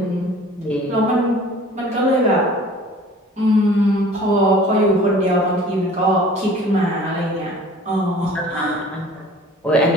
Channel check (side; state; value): both; normal; correlation 0.47